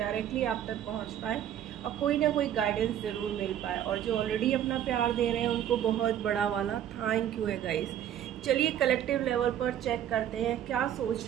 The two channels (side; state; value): left; quieter; 10.6 dB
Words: आप तक पहुँच पाए और कोई ना कोई गाइडेंस ज़रूर मिल पाए। और जो ऑलरेडी अपना प्यार दे रहे हैं उनको बहुत बड़ा वाला थैंक यू है गाइज। चलिए कलेक्टिव लेवल पर चेक करते हैं क्या